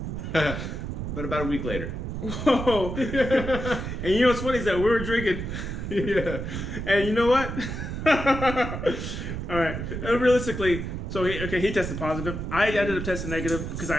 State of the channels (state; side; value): noise; right; rumble, 5 dB below the sound